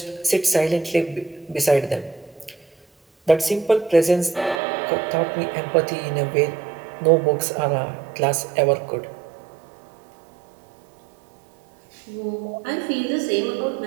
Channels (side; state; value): left; drops out; at 4.6 s